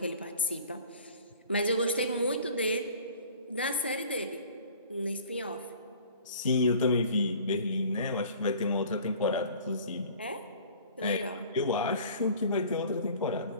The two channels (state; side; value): inverted; both; correlation -0.48